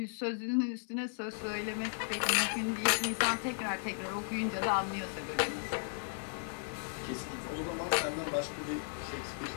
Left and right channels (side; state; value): right; silent; 54 dB below the other